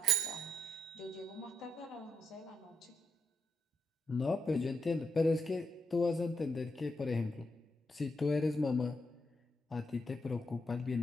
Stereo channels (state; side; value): normal; both; correlation 0.81